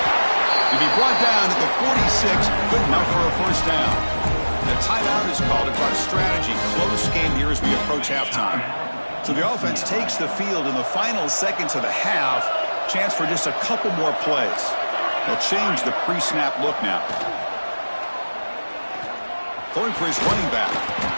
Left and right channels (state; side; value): inverted; both; correlation -1.00